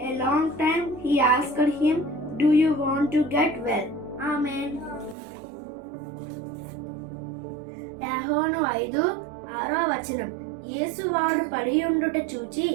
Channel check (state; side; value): drops out; left; at 5.2 s